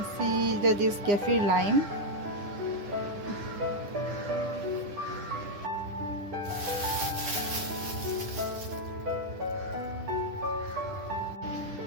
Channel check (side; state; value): left; late; 9.9 ms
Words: see that is kaffir lime.